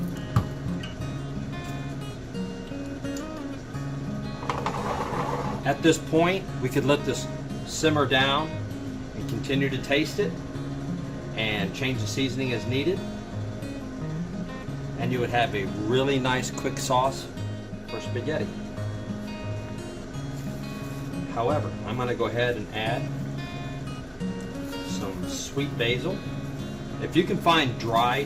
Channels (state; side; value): identical; both; correlation 1.00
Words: At this point, we could let this simmer down and continue to taste it and change the seasoning as needed. And you would have a really nice quick sauce for spaghetti. However, I'm going to go ahead and add some sweet basil. If you can find